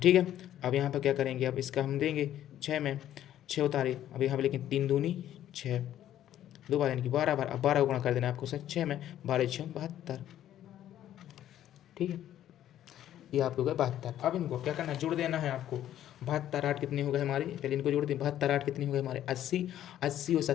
है, अब यहाँ पर क्या करेंगे, अब इसका हम देंगे 6 में 6 उतारे, अब यहाँ पर लेकिन 3 दूनी 6 2 बार, यानी कि 12 बार। अब 12 गुणा कर देना आपको सर 6 में, 12 6 72। ठीक है, ये आपको हो गया 72। अब इनको क्या करना है, जोड़ देना है आपको। 72 8 कितने हो गए हमारे, पहले इनको जोड़ दें। 72 8 कितने हो गए हमारे 80, 80 और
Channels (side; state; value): right; quieter; 11.8 dB